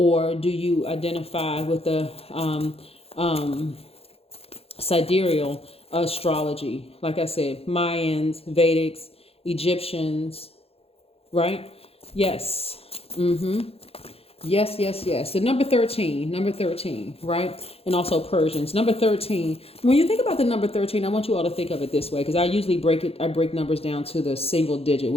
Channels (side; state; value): right; late; 0.29 ms